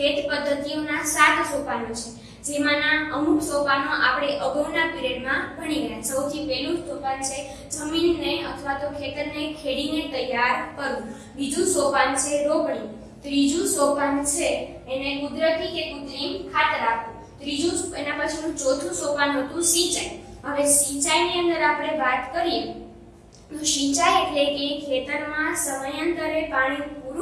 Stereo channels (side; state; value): both; identical; correlation 1.00